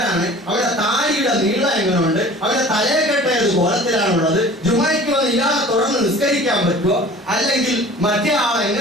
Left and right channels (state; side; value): normal; both; correlation 0.44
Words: അവരുടെ താടിയുടെ നീളം എങ്ങനെയുണ്ട്? അവരുടെ തലയെക്കെട്ട ഏത് കോലത്തിലാണുള്ളത്? ജുമയ്ക്ക് വന്ന് ഇയാളെ തുടർന്ന് നിസ്കരിക്കാൻ പറ്റുമോ? അല്ലെങ്കിൽ മറ്റേ ആൾ